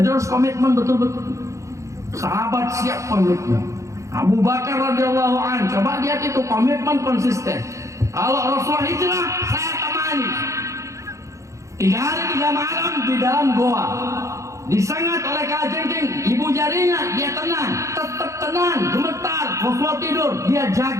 harus komitmen betul-betul. Sahabat siap komitmen. Abu Bakar radhiyallahu anhu, coba lihat itu komitmen konsisten. Kalau Rasulullah hijrah, saya temani. 3 hari 3 malam di dalam goa, disengat oleh kalajengking, ibu jarinya, dia tenang, tetap tenang, gemetar. Rasulullah tidur, dia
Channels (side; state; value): left; late; 0.15 ms